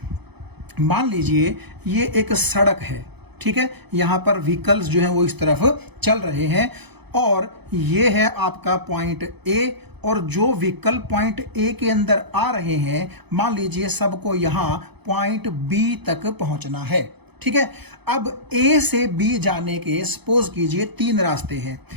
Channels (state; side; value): late; left; 0.98 ms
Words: मान लीजिए ये एक सड़क है, ठीक है, यहां पर व्हीकल्स जो हैं वो इस तरफ चल रहे हैं, और ये है आपका पॉइंट ए, और जो व्हीकल पॉइंट ए के अंदर आ रहे हैं, मान लीजिए सबको यहां पॉइंट बी तक पहुंचना है। ठीक है, अब ए से बी जाने के सपोज कीजिए 3 रास्ते हैं।